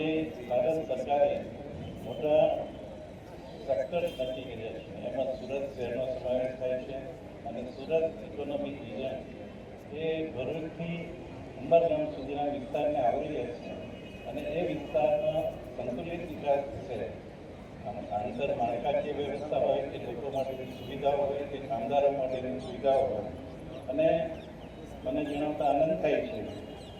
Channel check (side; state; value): both; identical; correlation 1.00